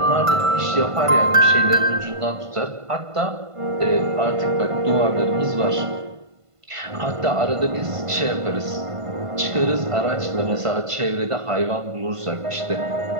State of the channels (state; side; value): late; left; 1.5 ms